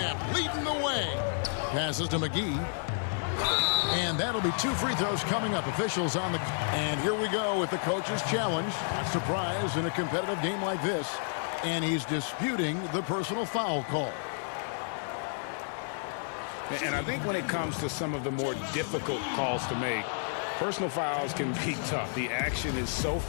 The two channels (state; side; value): silent; right; 57 dB below the other